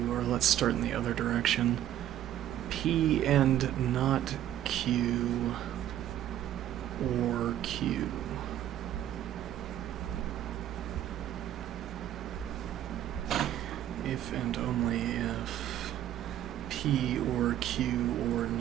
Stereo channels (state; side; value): quieter; left; 11.9 dB